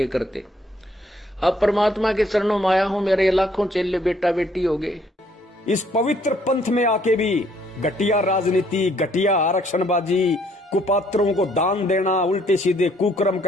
करते। अब परमात्मा के चरणों में आया हूं, मेरे लाखों चेले बेटा बेटी हो गए। इस पवित्र पंथ में आके भी घटिया राजनीति, घटिया आरक्षणबाजी, कुपात्रों को दान देना, उल्टे सीधे कुकर्म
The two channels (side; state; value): both; normal; correlation 0.65